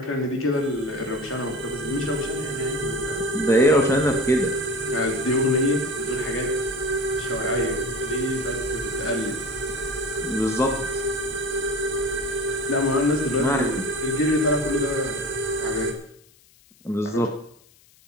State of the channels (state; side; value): noise; left; hiss, 29 dB below the sound